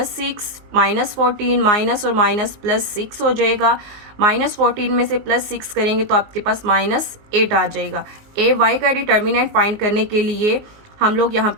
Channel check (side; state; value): left; late; 19 ms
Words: -14 माइनस और माइनस +6 हो जाएगा। -14 में से +6 करेंगे तो आपके पास -8 आ जाएगा। ए वाई का डिटर्मिनेंट फाइंड करने के लिए हम लोग यहाँ